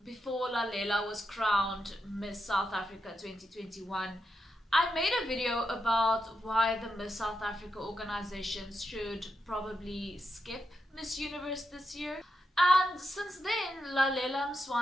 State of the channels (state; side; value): normal; both; correlation 0.85